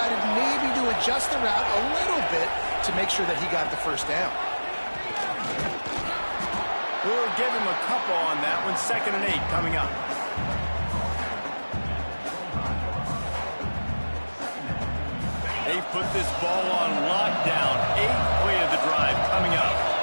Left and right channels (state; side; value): inverted; both; correlation -1.00